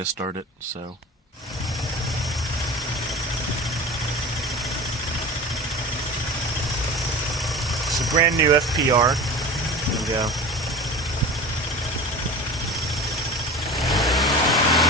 start it, so... It's a brand new FPR. There we go.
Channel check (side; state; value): both; normal; correlation 0.34